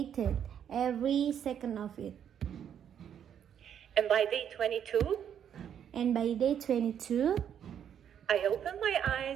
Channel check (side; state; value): left; quieter; 8.9 dB